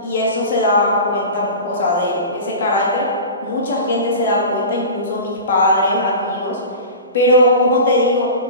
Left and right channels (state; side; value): inverted; both; correlation -0.33